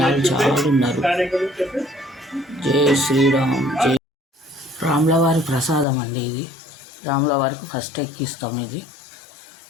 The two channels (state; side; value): drops out; right; at 5.9 s